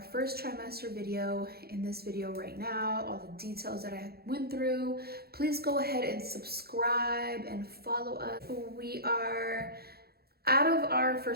first trimester video in this video right now, all the details that I went through. Please go ahead and subscribe and follow us. We are out of our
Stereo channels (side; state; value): left; late; 0.46 ms